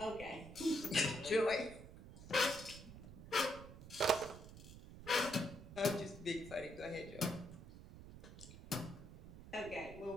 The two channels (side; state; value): right; noise; rumble, 14 dB below the sound